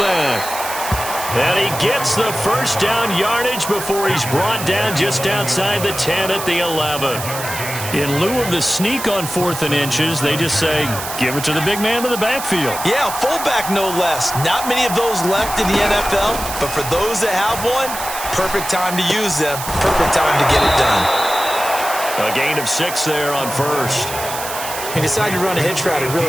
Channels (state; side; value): noise; right; hiss, 8 dB below the sound